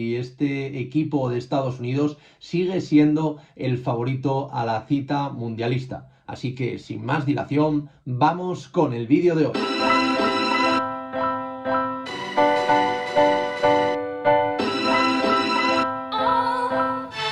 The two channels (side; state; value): both; identical; correlation 1.00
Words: este equipo de Estados Unidos sigue siendo el favorito a la cita mundialista. Así que, sin más dilación, vamos con el vídeo de hoy.